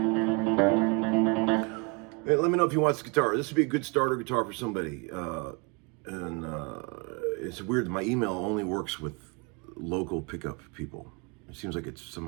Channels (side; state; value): left; quieter; 30.6 dB